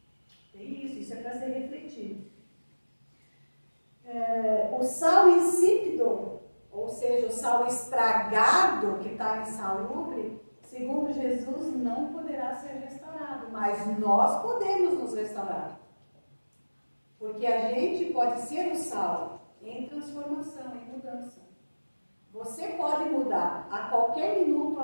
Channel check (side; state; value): both; inverted; correlation -1.00